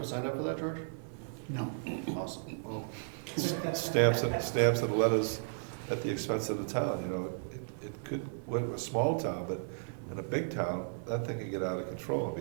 signed up for that, George? No. Awesome. well, stamps and letters at the expense of the town, you know. It could, we're a small town, but in a big town, that thing can get out of control and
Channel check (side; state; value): left; silent; digital silence